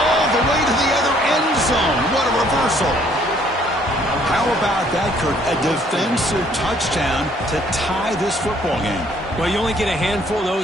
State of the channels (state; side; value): normal; both; correlation 0.63